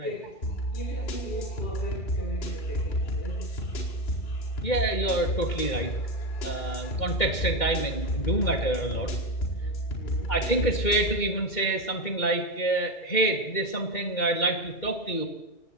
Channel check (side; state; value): right; late; 2.1 ms